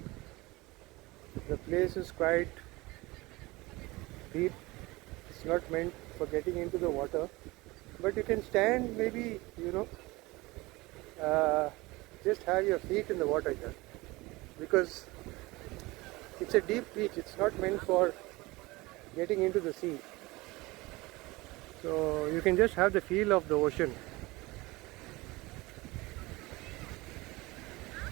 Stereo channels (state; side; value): quieter; left; 21.9 dB